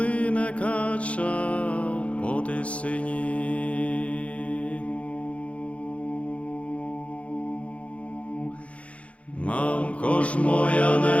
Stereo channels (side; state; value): right; late; 0.063 ms